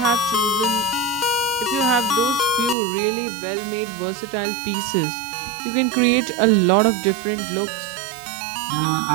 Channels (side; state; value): left; drops out; at 2.8 s